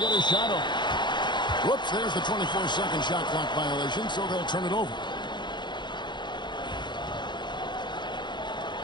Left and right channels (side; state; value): right; late; 0.22 ms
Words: a shot off. Whoops, there's the 24-second shot clock violation, so they'll turn it over.